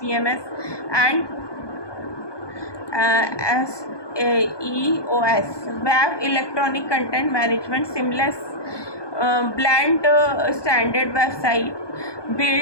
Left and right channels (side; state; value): right; late; 1.2 ms